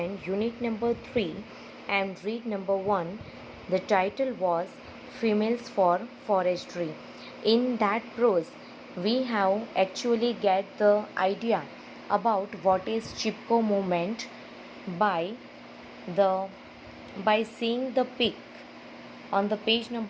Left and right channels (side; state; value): both; identical; correlation 1.00